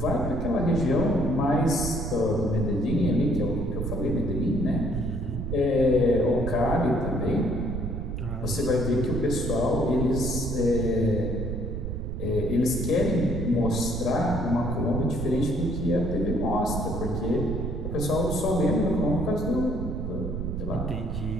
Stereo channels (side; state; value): right; noise; rumble, 4 dB below the sound